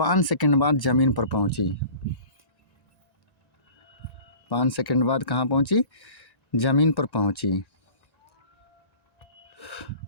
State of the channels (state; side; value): late; right; 1.9 ms